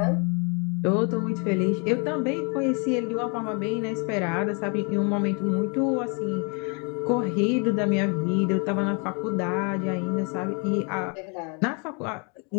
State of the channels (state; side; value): quieter; right; 35.3 dB